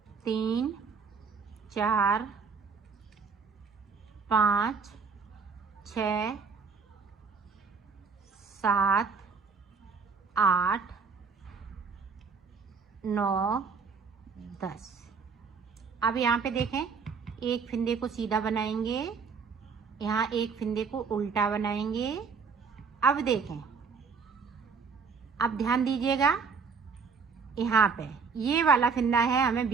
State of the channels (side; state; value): left; quieter; 5.3 dB